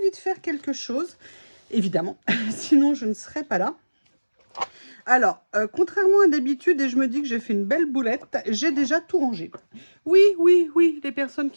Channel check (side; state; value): both; inverted; correlation -1.00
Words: de faire quelque chose, évidemment, sinon je ne serais pas là. Alors, contrairement à d'habitude, et je me dis que j'ai fait une belle boulette, j'ai déjà tout rangé. Oui, oui, oui, les personnes